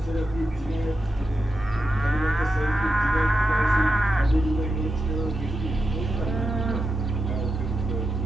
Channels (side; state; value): both; normal; correlation 0.88